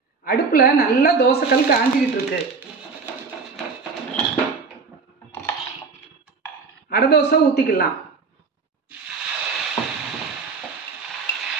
அடுப்பில் நல்லா தோசைக்கல் காஞ்சிக்கிட்டு இருக்கு. அடை தோசை ஊற்றிக்கலாம்.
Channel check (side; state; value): left; quieter; 4.8 dB